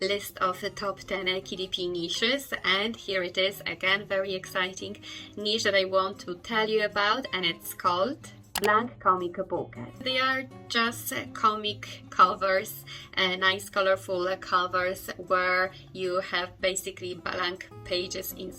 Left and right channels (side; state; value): both; identical; correlation 1.00